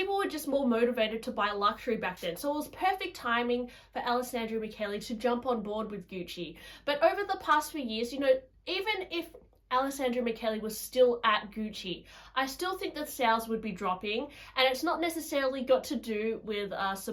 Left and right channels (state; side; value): identical; both; correlation 1.00